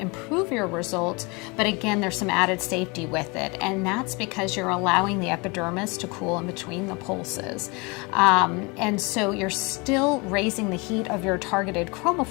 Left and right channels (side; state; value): right; quieter; 27.9 dB